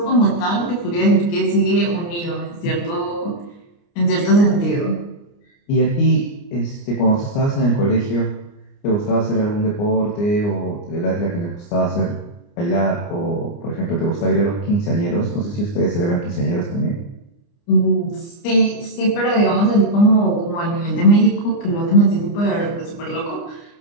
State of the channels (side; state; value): right; late; 29 ms